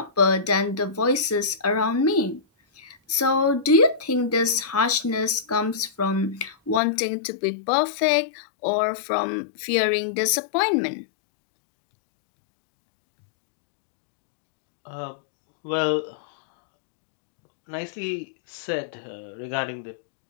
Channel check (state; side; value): drops out; right; at 6.8 s